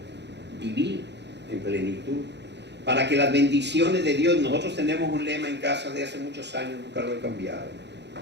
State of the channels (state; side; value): late; left; 0.50 ms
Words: vivir en plenitud, para que las bendiciones de Dios, nosotros tenemos un lema en casa de hace muchos años, nunca lo he cambiado.